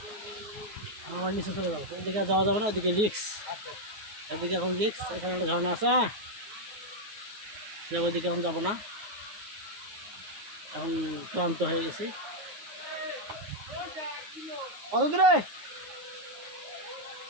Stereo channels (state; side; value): late; left; 9.5 ms